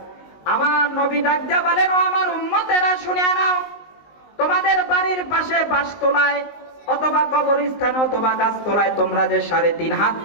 আমার নবী ডাক দিয়া বলেন, ও আমার উম্মতেরা শুনে নাও, তোমাদের বাড়ির পাশে বাসতলায় অথবা কবরস্থানে অথবা গাছতলায় তোমরা যে 3.5 হাত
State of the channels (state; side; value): late; right; 19 ms